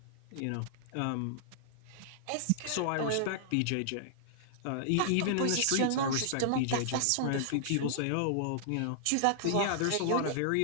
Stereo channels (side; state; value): both; different; correlation -0.01